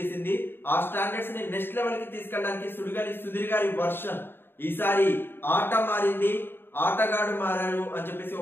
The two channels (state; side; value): late; right; 0.10 ms